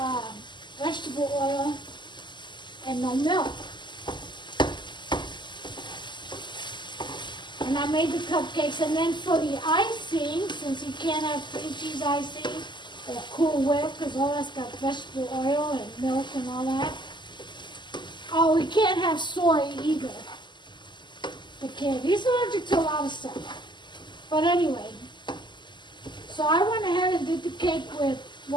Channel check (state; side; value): late; right; 0.22 ms